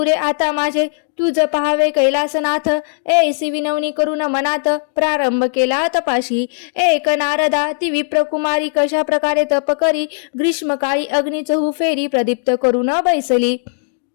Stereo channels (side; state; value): right; silent; digital silence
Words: आता माझे. तुझ पहावे कैलासनाथ. ऐसी विनवणी करून मनात. प्रारंभ केला तपाशी. एक नारदा ती विप्रकुमारी. कशा प्रकारे तप करी. ग्रीष्मकाळी अग्नी चहू फेरी. प्रदीप्त करून बैसली.